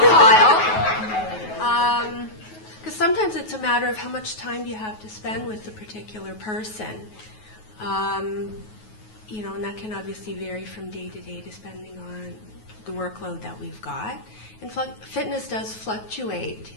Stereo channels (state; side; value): late; right; 9.3 ms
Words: file, because sometimes it's a matter of how much time do you have to spend with the particular person. and that can obviously vary from day to day depending on the workload that we've got. And fitness does fluctuate.